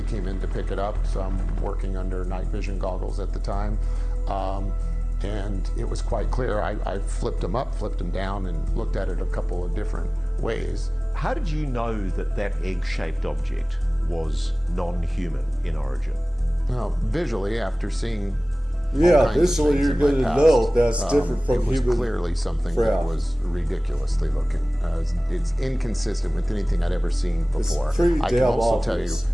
came in to pick it up, so I'm working under night vision goggles at the time. And it was quite clear. I flipped them up, flipped them down, and looked at it a couple of different ways. How did you know that that egg-shaped object was non-human in origin? Well, visually, after seeing visually you're going to know that's different from human. It was clearly something that was ridiculously looking. It's inconsistent with anything I'd ever seen before. It's pretty I can damn also obvious.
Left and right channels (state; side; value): normal; both; correlation 0.98